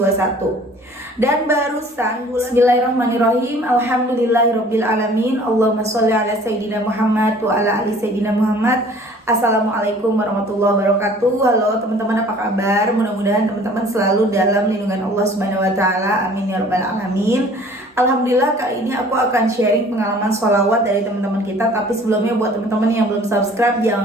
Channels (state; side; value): normal; both; correlation 0.51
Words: Dan barusan bulan Bismillahirrahmanirrahim, Alhamdulillahirrabbilalamin, Allahumma sholli ala Sayyidina Muhammad wa ala ali Sayyidina Muhammad. Assalamualaikum warahmatullahi wabarakatuh. Halo teman-teman, apa kabar? Mudah-mudahan teman-teman selalu dalam lindungan Allah Subhanahu wa Ta'ala. Amin ya rabbal alamin. Alhamdulillah, kali ini aku akan sharing pengalaman sholawat dari teman-teman kita. Tapi sebelumnya buat teman-teman yang belum subscribe,